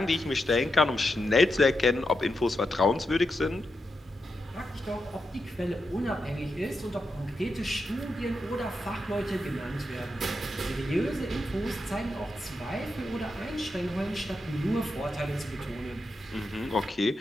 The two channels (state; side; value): normal; both; correlation 0.86